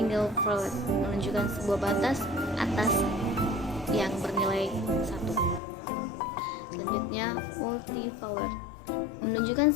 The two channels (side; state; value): right; drops out; at 5.6 s